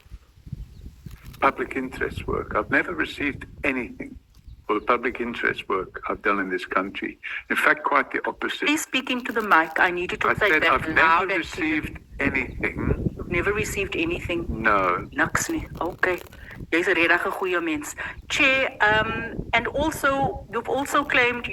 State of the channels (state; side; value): identical; both; correlation 1.00